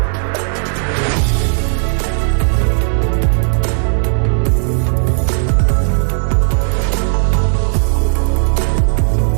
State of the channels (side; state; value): left; silent; 57 dB below the other